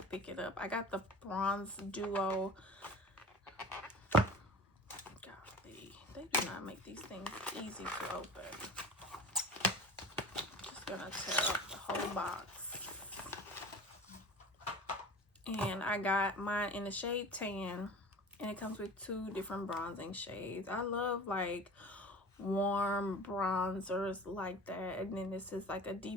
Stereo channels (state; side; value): normal; both; correlation 0.38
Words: pick it up. I got the Bronze Duo. They do not make these things easy to open. Just gonna tear up the whole box. And I got mine in the shade Tan, and it comes with 2 different bronzing shades. I love like warm bronzers like that, and then this is like a